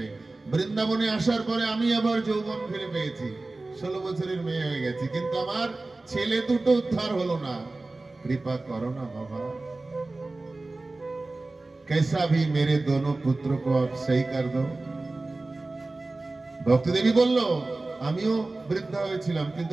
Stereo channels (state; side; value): quieter; left; 3.2 dB